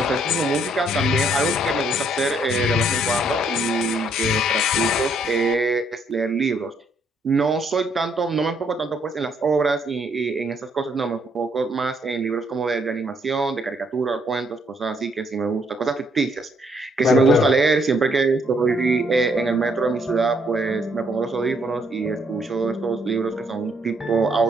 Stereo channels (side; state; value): both; normal; correlation 0.70